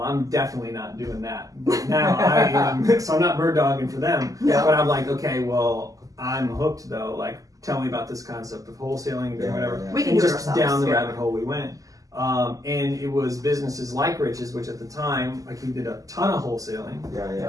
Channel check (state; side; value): late; left; 0.17 ms